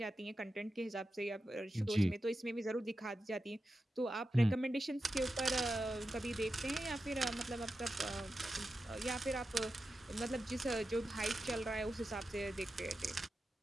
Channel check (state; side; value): normal; both; correlation 0.91